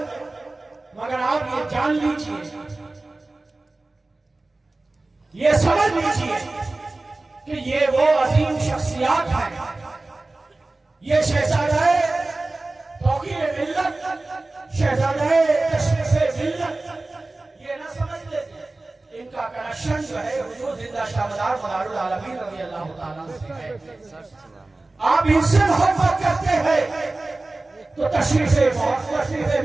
مگر آپ یہ جان لیجئے، یہ سمجھ لیجئے کہ یہ وہ عظیم شخصیات ہیں، یہ شہزادہ توقیر ملت، شہزادہ تشریف ملت، یہ نہ سمجھ لیتے ان کا کنیکشن جو ہے حضور زندہ شاہدار مدار العالمین رضی اللہ تعالیٰ سے ہے۔ آپ ان سے محبت کرتے ہیں تو تشریف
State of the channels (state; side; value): quieter; left; 3.1 dB